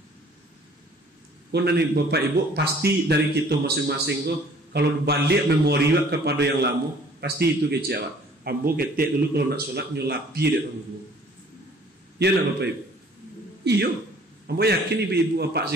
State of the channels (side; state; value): both; normal; correlation 0.55